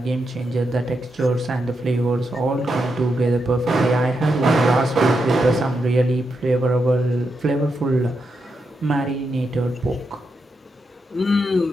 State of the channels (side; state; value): both; normal; correlation 0.84